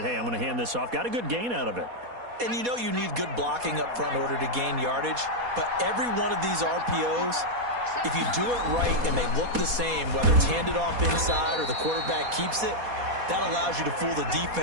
hey, I'm going to hand this off. Got a good gain out of it. And you know you need good blocking up front in order to gain yardage. But every one of these RPOs, if you do it right and they look the same, whether it's handed off inside or the quarterback keeps it, that allows you to fool the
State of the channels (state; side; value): late; left; 4.2 ms